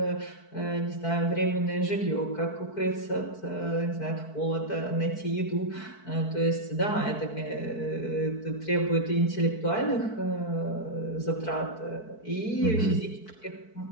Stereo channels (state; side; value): late; right; 4.6 ms